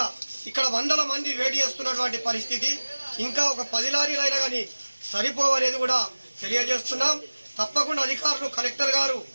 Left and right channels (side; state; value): both; inverted; correlation -1.00